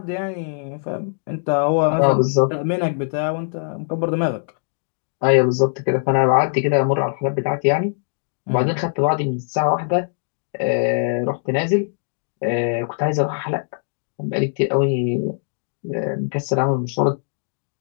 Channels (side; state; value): right; silent; digital silence